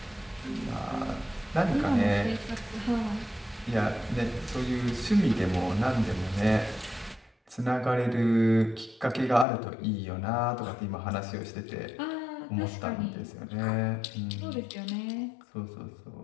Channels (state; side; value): drops out; right; at 9.5 s